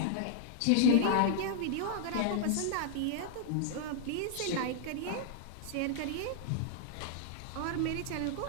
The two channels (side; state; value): both; different; correlation -0.01